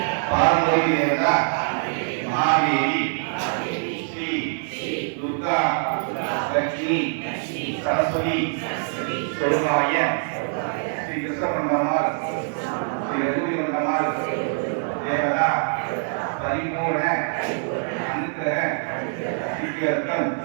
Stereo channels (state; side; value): silent; left; digital silence